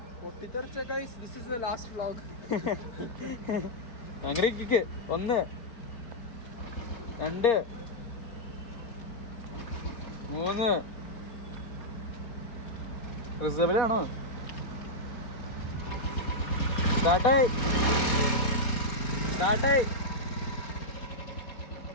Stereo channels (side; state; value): right; late; 4.1 ms